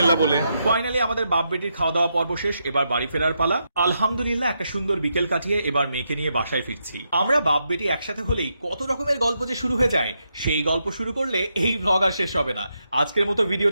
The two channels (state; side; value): inverted; both; correlation -0.82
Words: বলে। ফাইনালি আমাদের বাপ বেটির খাওয়া দাওয়া পর্ব শেষ, এবার বাড়ি ফেরার পালা। আলহামদুলিল্লাহ একটা সুন্দর বিকেল কাটিয়ে এবার মেয়েকে নিয়ে বাসায় ফিরছি। আমরা বাপ বেটি একসাথে হলেই কত রকমের গল্প যে শুরু হয়ে যায়, সেই গল্প শুরু করলে এই ব্লগ আর শেষ হবে না। আজকের মতো